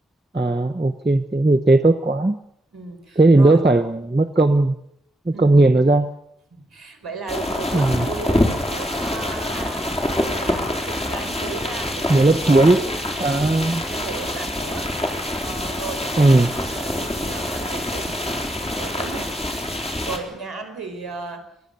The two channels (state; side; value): normal; both; correlation 0.81